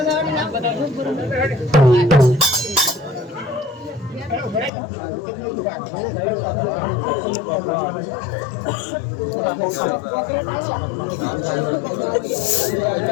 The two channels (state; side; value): drops out; right; at 4.7 s